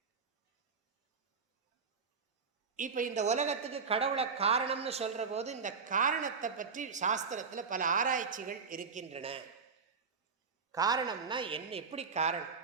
இப்போ இந்த உலகத்துக்கு கடவுளை காரணம்னு சொல்கிற போது இந்த காரணத்தை பற்றி சாஸ்திரத்தில் பல ஆராய்ச்சிகள் இருக்கின்றன. காரணம்னா என்ன, எப்படி காரணம்?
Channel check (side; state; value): left; quieter; 5.3 dB